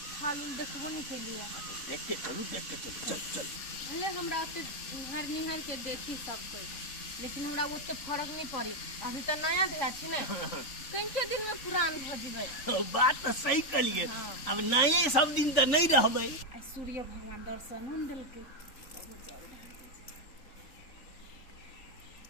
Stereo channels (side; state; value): right; late; 3.9 ms